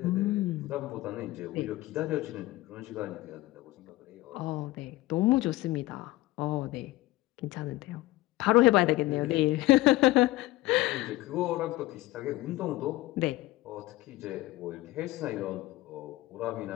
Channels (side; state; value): right; quieter; 18.2 dB